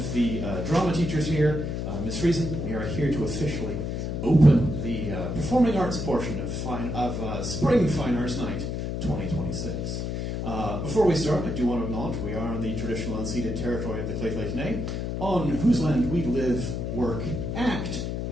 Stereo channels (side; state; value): left; noise; hum, 3 dB below the sound